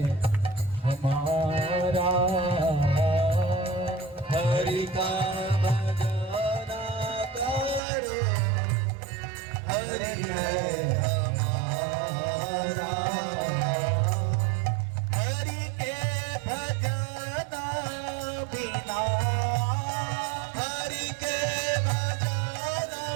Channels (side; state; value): left; drops out; at 7.8 s